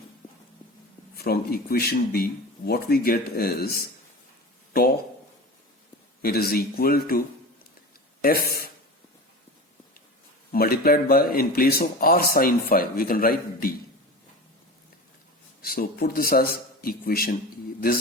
equation B, what we get is tau, it is equal to F multiplied by, in place of r sine phi, we can write d. So put this as equation E.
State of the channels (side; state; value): both; normal; correlation 0.32